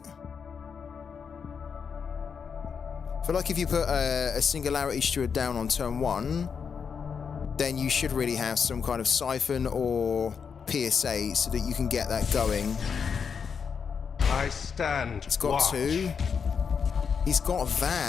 I feel like if you put a Singularity Steward down on turn 1, then you should really have some kind of siphon or PSA so that you can get that going. I stand. It's got 2. He's got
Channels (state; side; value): quieter; right; 6.3 dB